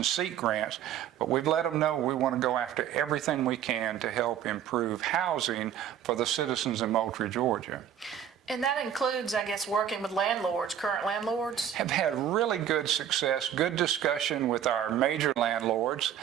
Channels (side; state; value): left; quieter; 9.7 dB